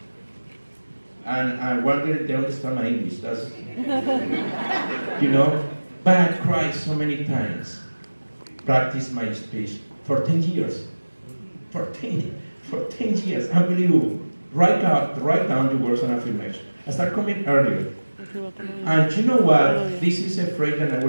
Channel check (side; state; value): both; inverted; correlation -1.00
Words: And I wonder if they understand my English. That's, But I cried so many times. Practice my speech for 10 years. For 10 years, unbelievable. Write down your words and affirmation. I start coming earlier. And you know what? This is a phrase that I